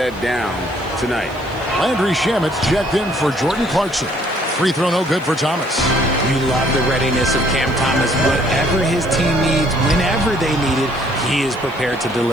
down tonight. Landry Shamit's checked in for Jordan Clarkson. Free throw no good for Thomas. You love the readiness of Cam Thomas. Whatever his team needs, whenever they need it, he is prepared to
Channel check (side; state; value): right; noise; hiss, 26 dB below the sound